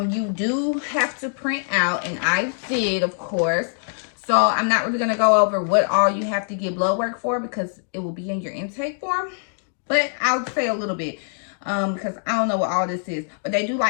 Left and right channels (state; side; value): silent; right; digital silence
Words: you do have to print out, and I did, of course. So I'm not really going to go over what all you have to get blood work for because it will be in your intake form, but I'll say a little bit because I don't know what all this is. But they do